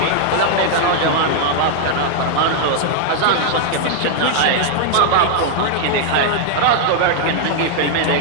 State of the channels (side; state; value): both; different; correlation 0.00